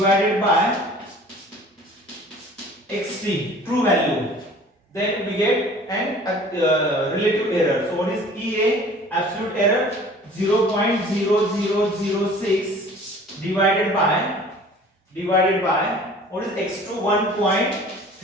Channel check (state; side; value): normal; both; correlation 0.48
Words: by xt, true value. Then we get an relative error. So what is EA? Absolute error 0.0006 divided by what is x2?